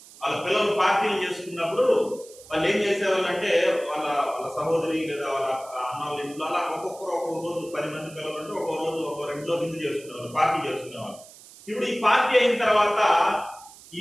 వాళ్ళ పిల్లలు పార్టీలు చేసుకున్నప్పుడు వాళ్ళు ఏం చేసేవాళ్ళు అంటే వాళ్ళ సహోదరి లేదా వాళ్ళ అన్న వాళ్ళ ఇంట్లో అలా ఒక్కొక్కరు ఒక్కొక్క రోజు 10 మంది పిల్లలు అంటే ఒక్కో రోజు ఒక్కో రెండులో విందు చేసుకునేవాళ్ళు, పార్టీ చేసుకునేవాళ్ళు. ఇప్పుడు ఈ పార్టీ అయిన తర్వాత ఈ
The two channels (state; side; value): noise; right; hiss, 20 dB below the sound